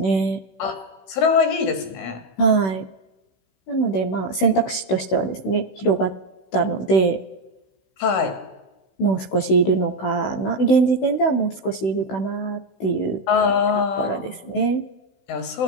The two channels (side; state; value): right; late; 16 ms